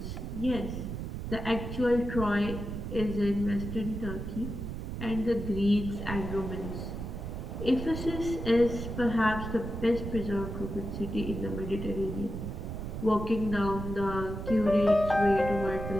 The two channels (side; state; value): right; noise; rumble, 6 dB below the sound